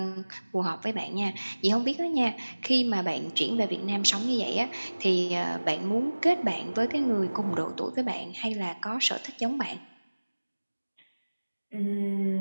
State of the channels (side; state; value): both; inverted; correlation -1.00